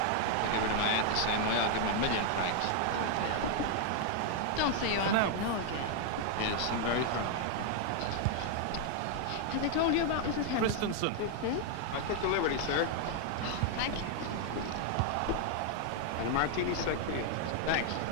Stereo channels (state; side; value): different; both; correlation 0.00